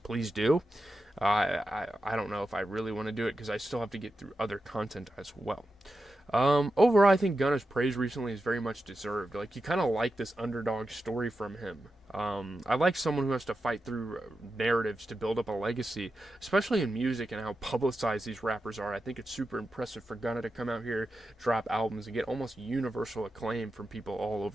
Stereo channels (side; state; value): both; normal; correlation 0.90